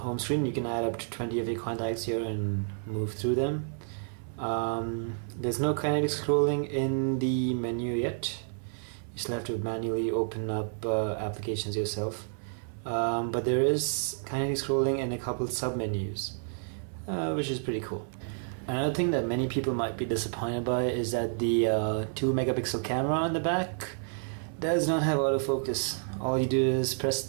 screen. You can add up to 20 of your contacts here and move through them. There's no kinetic scrolling in the menu yet. You still have to manually open up applications yourself. But there is kinetic scrolling in a couple sub-menus, which is pretty cool. Another thing that many people might be disappointed by is that the 2 megapixel camera on the back does not have autofocus. All you do is press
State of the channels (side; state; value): left; silent; 58 dB below the other